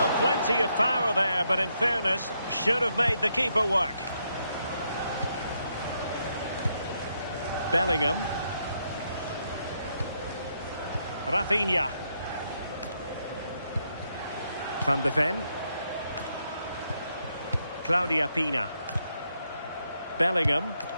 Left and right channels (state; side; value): inverted; both; correlation -0.78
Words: plenty of power there, but in fairness, should have made the keeper work. Bellingham. Rafinha. Van de Ven. Claudia Pina. Bellingham.